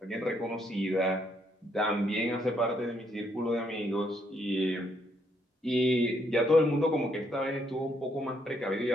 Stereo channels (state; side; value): normal; both; correlation 0.73